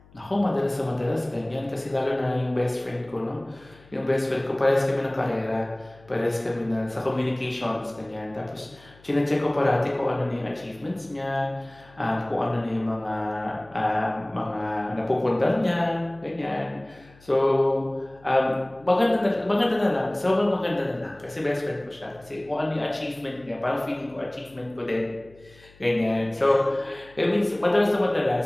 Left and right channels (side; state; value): left; noise; hum, 26 dB below the sound